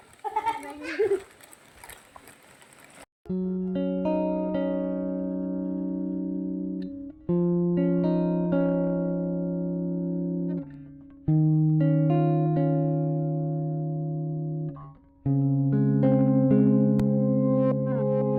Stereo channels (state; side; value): identical; both; correlation 1.00